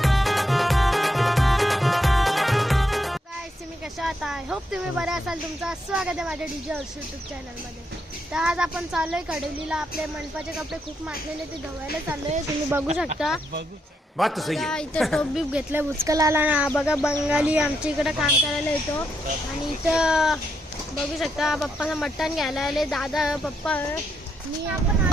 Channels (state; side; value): normal; both; correlation 0.80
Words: गाइस तुम्ही कशा आहात? आय होप तुम्ही बरे असाल. तुमचं स्वागत आहे माझ्या डीजे हर्ष यूट्यूब चॅनलमध्ये. तर आज आपण चाललोय कडवलीला. आपले मंडपाचे कपडे खूप मागलेले ते धुवायला चाललोय. तुम्ही बघू शकता. बात सही है. इथं टोप बीप घेतलंय बुचकलाला ना. बघा बंगाली आमच्या इकडे काम करायला येतो. आणि इथं बघू शकता पप्पाचं मटण घ्यायला आले दादा पप्पा. मी आपण